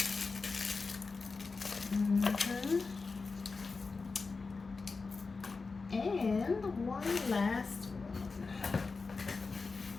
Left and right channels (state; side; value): quieter; right; 4.2 dB